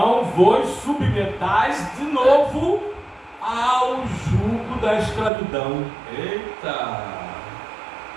vos submetais de novo ao jugo da escravidão. Eita!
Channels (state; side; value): drops out; left; at 5.3 s